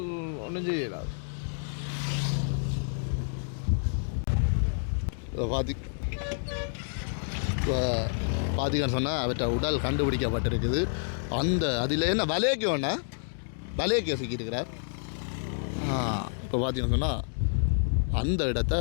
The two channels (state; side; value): silent; right; digital silence